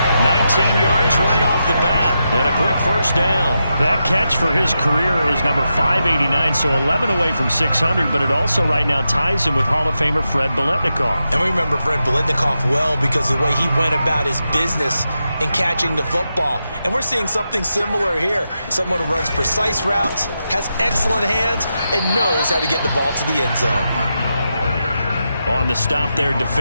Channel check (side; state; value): both; inverted; correlation -0.87